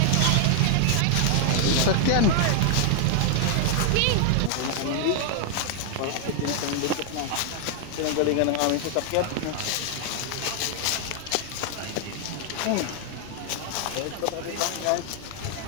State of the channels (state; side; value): different; both; correlation 0.00